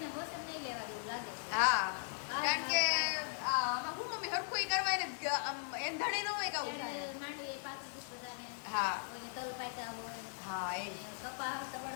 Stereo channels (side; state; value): right; silent; 52 dB below the other